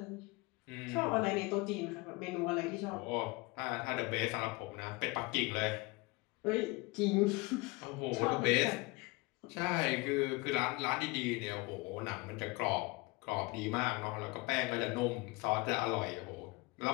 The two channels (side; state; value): right; quieter; 25.0 dB